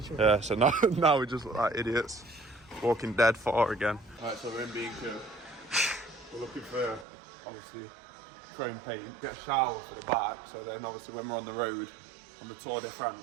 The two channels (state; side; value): drops out; left; at 7.1 s